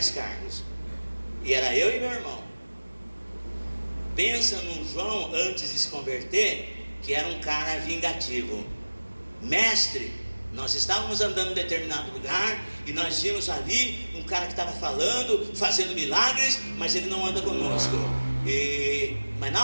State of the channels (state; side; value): inverted; both; correlation -1.00